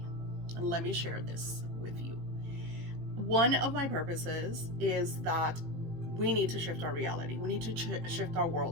And let me share this with you. One of my purposes is that we need to shift our reality. We need to shift our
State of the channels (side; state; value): left; late; 18 ms